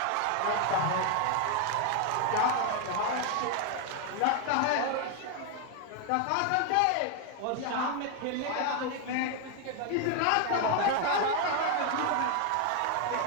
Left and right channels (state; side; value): different; both; correlation 0.01